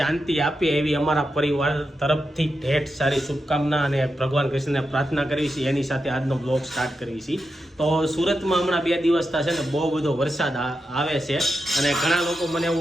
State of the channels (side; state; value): both; normal; correlation 0.88